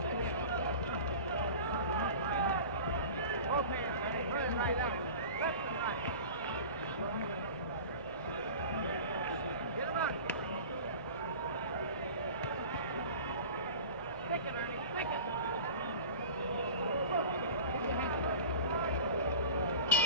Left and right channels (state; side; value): inverted; both; correlation -0.37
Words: Both hands, Ernie. Put it right out. Left and right. Get him out. Stick it, Ernie. Stick it.